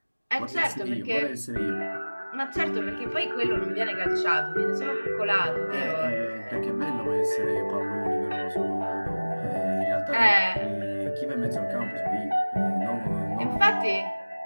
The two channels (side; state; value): both; inverted; correlation -1.00